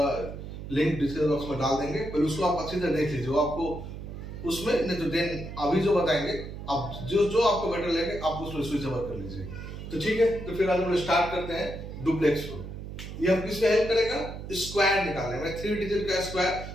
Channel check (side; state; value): right; noise; hum, 10 dB below the sound